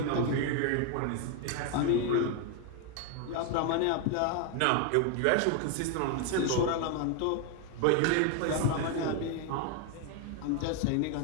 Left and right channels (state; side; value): different; both; correlation 0.01